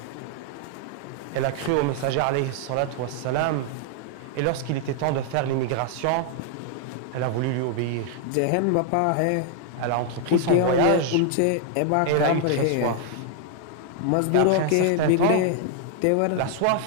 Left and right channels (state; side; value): different; both; correlation 0.00